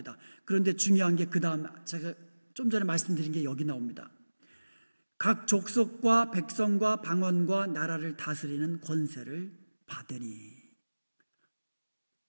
그런데 중요한 게 그 다음, 제가 좀 전에 말씀드린 게 여기 나옵니다. 각 족속과 백성과 방언과 나라를 다스리는 권세를 받으니,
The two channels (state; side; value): inverted; both; correlation -1.00